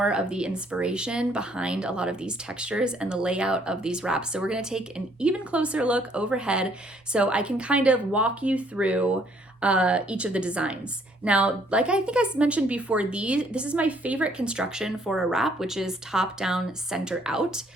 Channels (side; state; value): both; normal; correlation 0.65